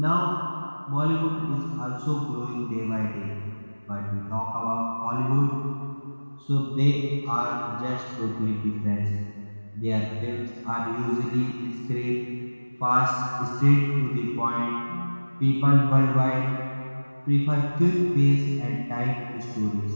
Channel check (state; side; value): inverted; both; correlation -1.00